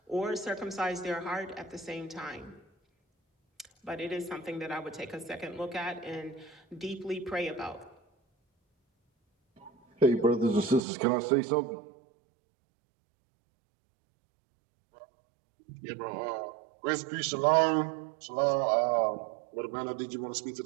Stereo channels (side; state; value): left; drops out; at 10.8 s